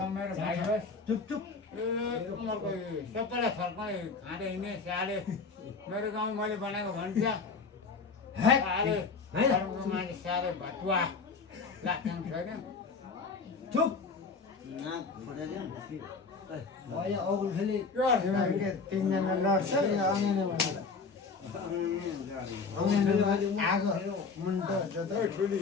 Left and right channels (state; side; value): quieter; right; 4.7 dB